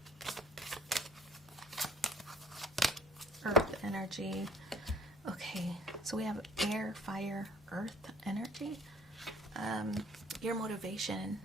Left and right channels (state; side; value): normal; both; correlation 0.52